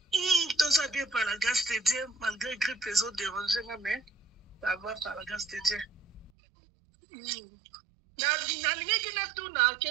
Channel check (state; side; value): drops out; left; at 6.3 s